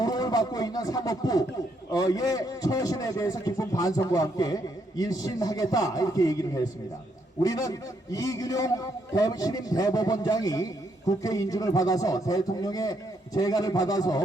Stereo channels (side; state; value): both; normal; correlation 0.75